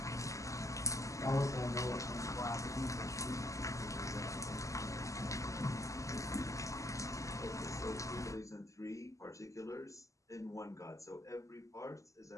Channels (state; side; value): late; right; 0.16 ms